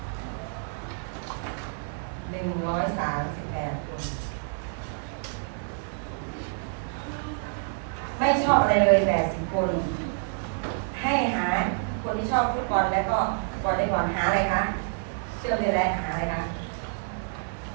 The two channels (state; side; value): silent; left; 59 dB below the other